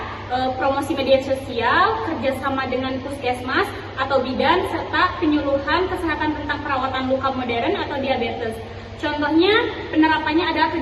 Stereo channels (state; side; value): identical; both; correlation 1.00